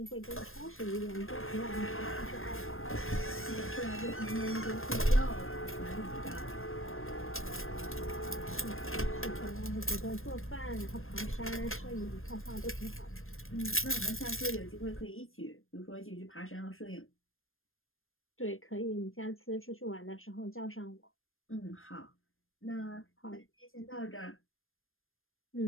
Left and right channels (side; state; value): right; late; 0.60 ms